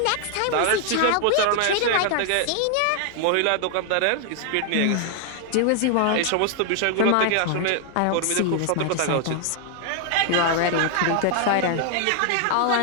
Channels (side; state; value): both; different; correlation 0.00